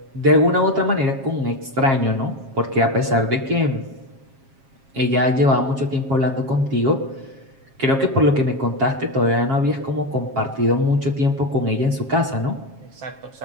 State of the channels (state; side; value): late; left; 7.4 ms